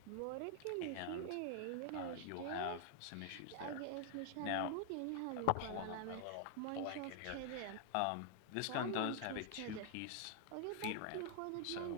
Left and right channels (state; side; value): different; both; correlation 0.00